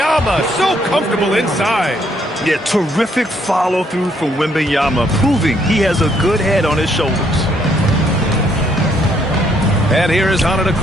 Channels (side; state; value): both; normal; correlation 0.70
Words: so comfortable inside. Yeah, terrific follow-through from Wembanyama, proving he has a good head on his shoulders. And here is